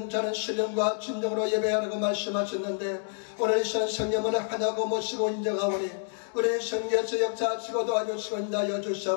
자는 신령과 진정으로 예배하라고 말씀하셨는데 오늘 이 시간 성령을 하나고 모시고 인정하오니 우리 성령에서 역사하시고 도와주시고 인하여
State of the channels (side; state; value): right; silent; 58 dB below the other